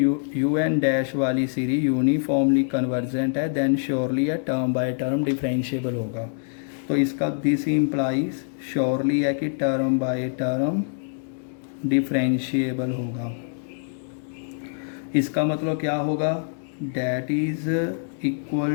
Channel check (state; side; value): silent; right; digital silence